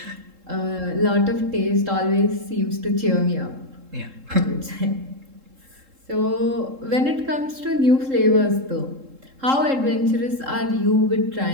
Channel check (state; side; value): late; left; 3.7 ms